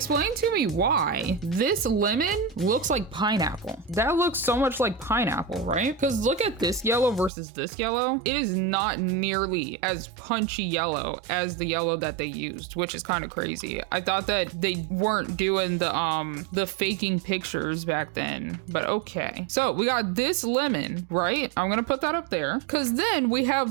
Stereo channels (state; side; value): drops out; left; at 7.3 s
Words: to me why this lemon looks like pineapple. That looks so much like pineapple, right? Because look at this yellow versus this yellow. It is not nearly as punchy yellow as the yellow that they used, which is kind of crazy. I thought that they weren't doing the faking pictures back then, but okay. So we got this lemon, right? I'm gonna put that up there because then we